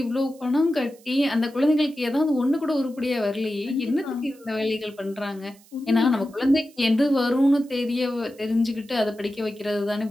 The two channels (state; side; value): noise; right; hiss, 27 dB below the sound